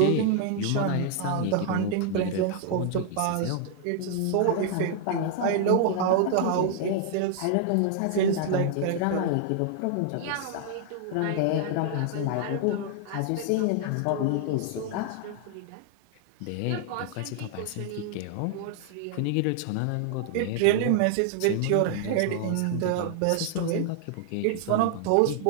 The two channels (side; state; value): both; different; correlation 0.00